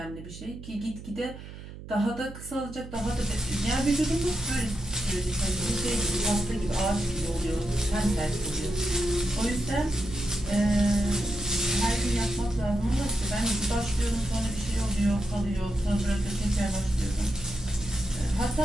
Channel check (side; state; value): right; noise; hum, 13 dB below the sound